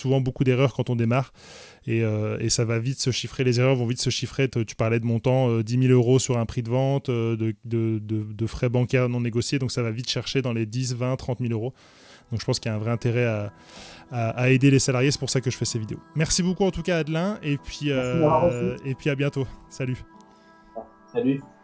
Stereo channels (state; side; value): identical; both; correlation 1.00